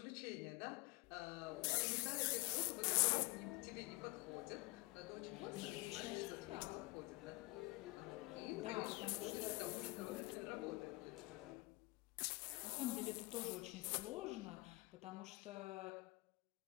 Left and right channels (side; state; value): right; quieter; 24.0 dB